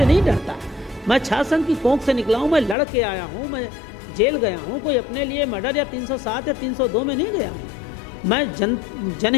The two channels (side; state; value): right; drops out; at 2.8 s